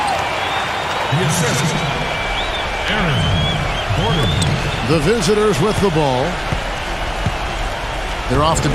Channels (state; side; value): identical; both; correlation 1.00